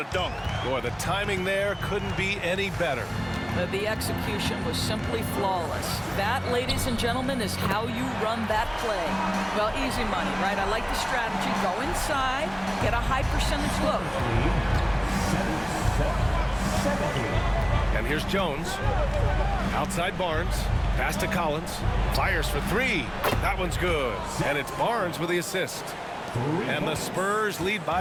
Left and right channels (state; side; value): identical; both; correlation 1.00